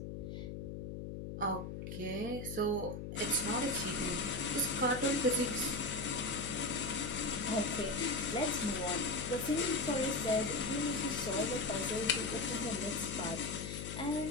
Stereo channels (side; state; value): left; noise; hum, 7 dB below the sound